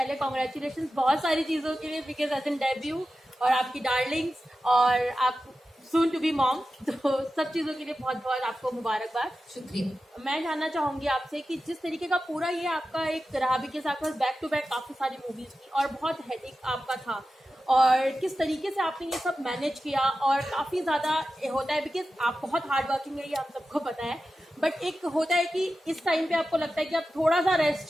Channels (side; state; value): both; normal; correlation 0.93